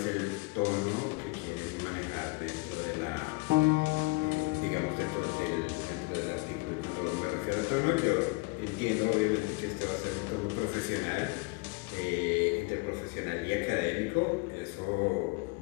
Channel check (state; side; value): quieter; right; 26.2 dB